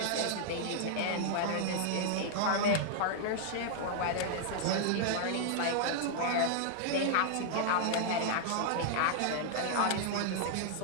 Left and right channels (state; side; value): different; both; correlation -0.01